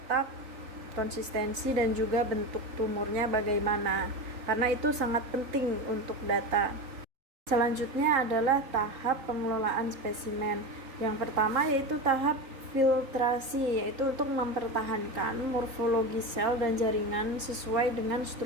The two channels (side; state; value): left; late; 3.8 ms